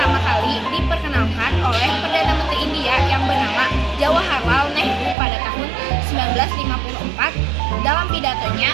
kali diperkenalkan oleh Perdana Menteri India yang bernama Jawaharlal Nehru pada tahun 1954 dalam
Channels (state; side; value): drops out; left; at 5.2 s